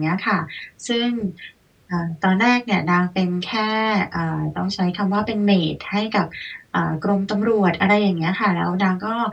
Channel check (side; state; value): both; identical; correlation 1.00